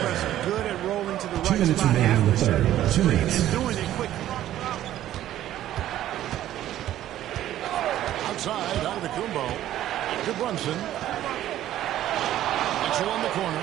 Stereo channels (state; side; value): quieter; left; 12.8 dB